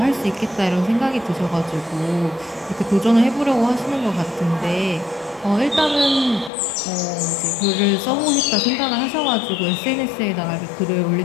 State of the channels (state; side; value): drops out; right; at 6.5 s